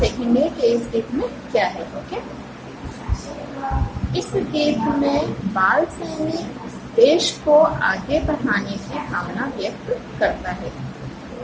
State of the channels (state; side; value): identical; both; correlation 1.00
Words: कि इस गीत में क्या है. ओके, इस गीत में बाल सैनिक देश को आगे बढ़ाने की भावना व्यक्त करता है.